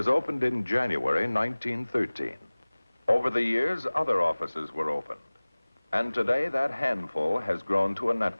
opened in January 1913. Over the years, other offices were opened. And today, that handful has grown to a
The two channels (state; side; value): inverted; both; correlation -1.00